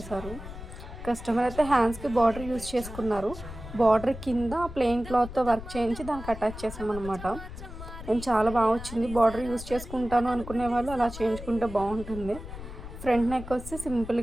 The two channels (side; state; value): left; noise; rumble, 11 dB below the sound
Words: కస్టమర్ అయితే హ్యాండ్స్కి బార్డర్ యూజ్ చేసుకున్నారు. బార్డర్ కింద ప్లెయిన్ క్లాత్తో వర్క్ చేయించి దానికి అటాచ్ చేసామన్నమాట. నేను చాలా బాగా వచ్చింది. బార్డర్ యూజ్ చేసుకుంటాను అనుకునే వాళ్ళు అలా చేయించుకుంటే బాగుంటుంది. ఫ్రంట్ నెక్ వచ్చి